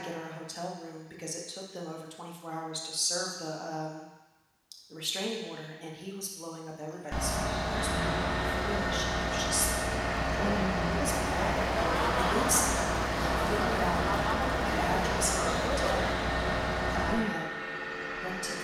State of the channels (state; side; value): identical; both; correlation 1.00